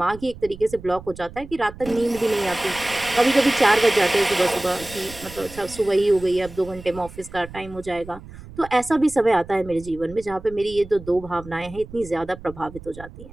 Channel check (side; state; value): right; noise; rumble, 16 dB below the sound